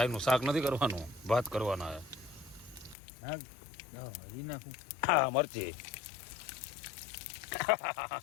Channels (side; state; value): right; drops out; at 3.0 s